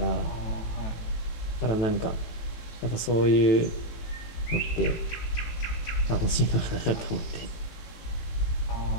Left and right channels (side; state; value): right; late; 18 ms